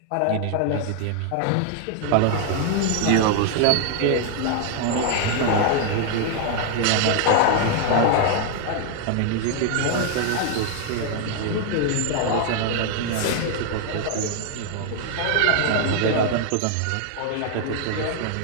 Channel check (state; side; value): different; both; correlation 0.00